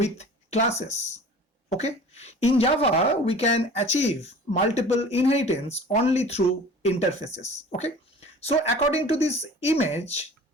classes. Okay, in Java we can achieve multiple inheritance only through interfaces. Okay, so according to this image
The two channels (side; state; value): both; normal; correlation 0.43